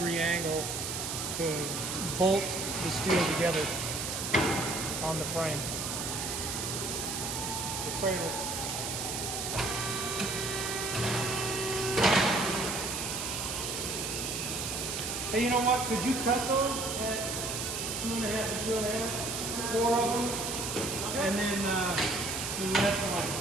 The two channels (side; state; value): right; noise; hiss, 3 dB below the sound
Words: angle to bolt the steel together on the frame. The cradle. Hey, you know what? Could you cut those at 2.5 and 2.5? 4 of them, and then the rest one.